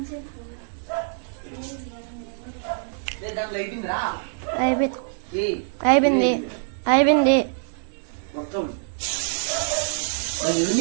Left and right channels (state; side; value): silent; left; 60 dB below the other